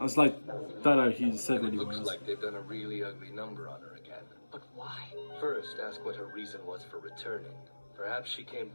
was like, thought he said And what it he looks was. like they've done a really ugly number on her again. But why? First, ask what her reason was for returning. Perhaps she came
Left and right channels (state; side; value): inverted; both; correlation -1.00